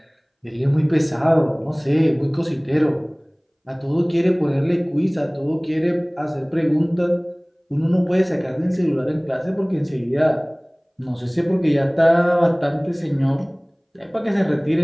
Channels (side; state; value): both; identical; correlation 1.00